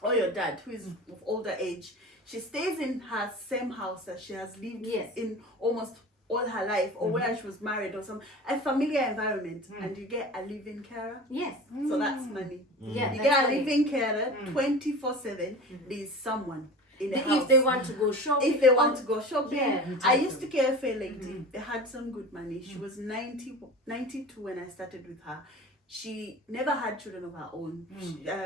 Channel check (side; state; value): both; normal; correlation 0.35